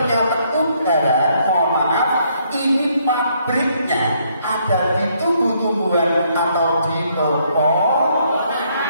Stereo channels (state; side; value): inverted; both; correlation -0.70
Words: udara, mohon maaf, ini pabriknya ada di tubuh tumbuhan atau di pohon.